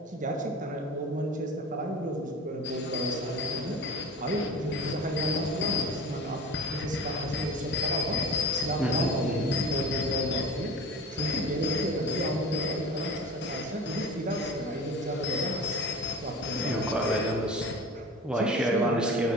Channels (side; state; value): both; normal; correlation 0.36